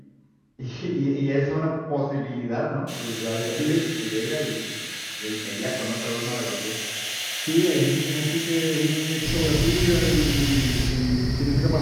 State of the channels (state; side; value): identical; both; correlation 1.00